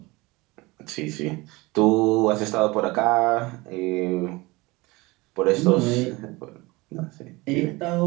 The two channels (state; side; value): quieter; left; 22.8 dB